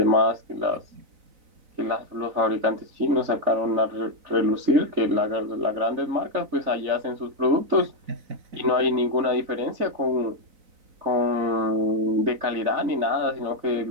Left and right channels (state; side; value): late; left; 4.0 ms